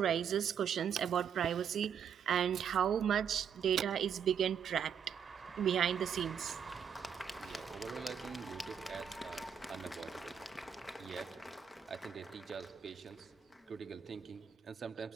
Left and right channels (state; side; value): quieter; left; 7.7 dB